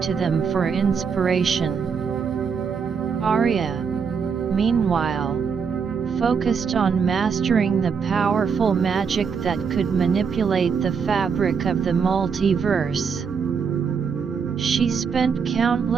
to them for inspiration. Aria, meanwhile, focused on mastering the powerful magic that could manipulate the fabric of the multiverse. She spent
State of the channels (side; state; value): left; quieter; 6.1 dB